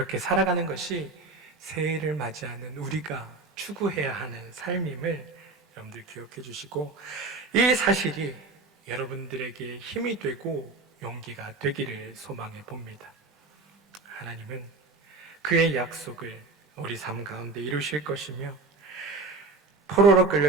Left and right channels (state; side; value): quieter; left; 3.6 dB